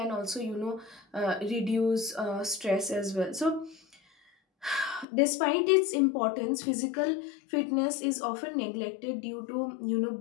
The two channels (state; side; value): drops out; right; at 5.1 s